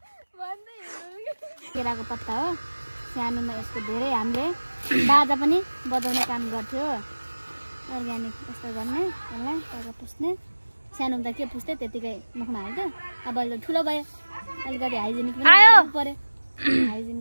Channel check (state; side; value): inverted; both; correlation -1.00